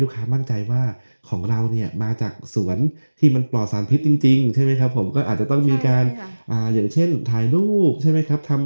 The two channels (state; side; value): inverted; both; correlation -1.00